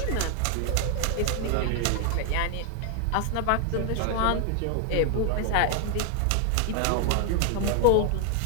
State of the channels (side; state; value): both; different; correlation 0.00